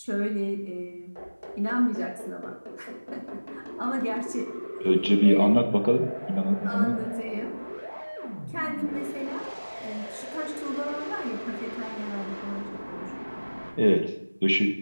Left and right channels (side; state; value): both; inverted; correlation -1.00